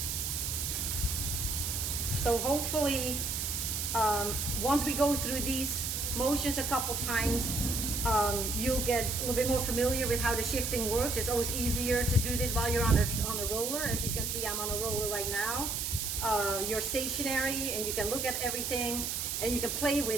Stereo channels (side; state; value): right; noise; hiss, 1 dB below the sound